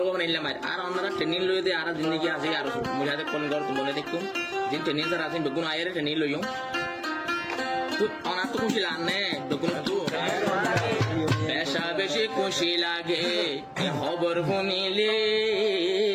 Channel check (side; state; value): both; identical; correlation 1.00